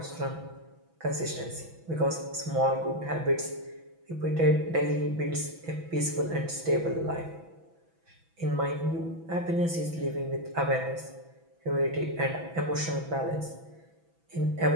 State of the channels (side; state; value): left; late; 6.0 ms